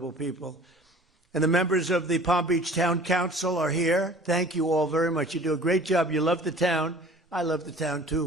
people. And the members of the Palm Beach Town Council are here. Thank you all very much. You do a great job. You love the town. I love the town,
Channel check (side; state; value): both; normal; correlation 0.47